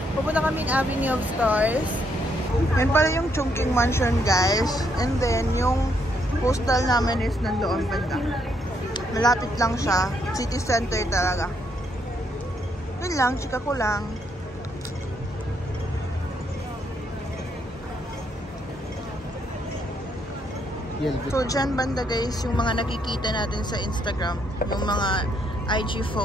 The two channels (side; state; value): both; normal; correlation 0.74